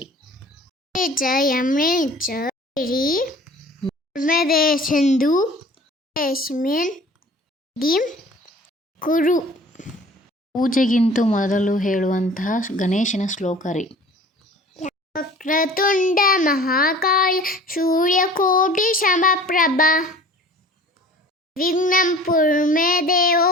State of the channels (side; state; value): both; normal; correlation 0.46